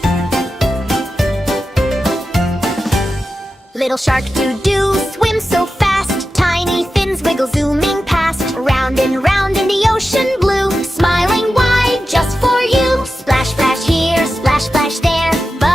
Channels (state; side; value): normal; both; correlation 0.92